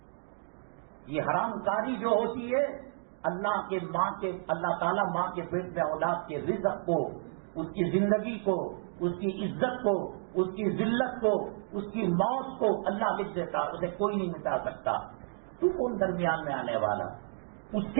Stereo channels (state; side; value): silent; left; 57 dB below the other